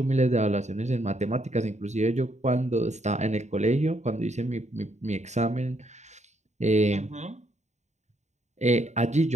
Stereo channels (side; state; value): left; late; 0.34 ms